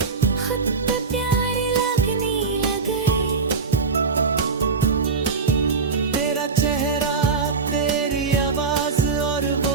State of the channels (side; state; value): left; quieter; 4.7 dB